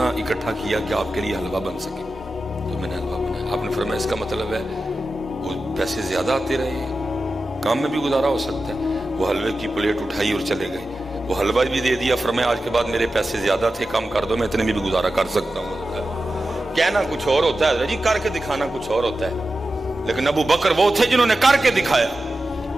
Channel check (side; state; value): both; normal; correlation 0.92